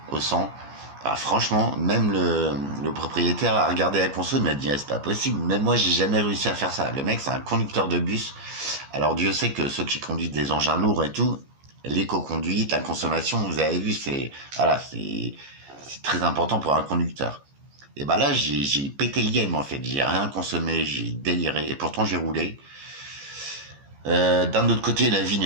au 100. Ah, franchement, même le propriétaire a regardé la conso, il m'a dit, ah, c'est pas possible. Même moi, j'ai jamais réussi à faire ça. Le mec, c'est un conducteur de bus. Alors, Dieu sait que ceux qui conduisent des engins lourds et tout, l'éco-conduite, la consommation, vous avez vu, voilà, c'est très important pour un conducteur. Et bah là, j'ai pété le game, en fait. J'ai rien consommé, j'ai déliré. Et pourtant, j'ai roulé. D'un autre côté, la vie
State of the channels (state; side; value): late; left; 14 ms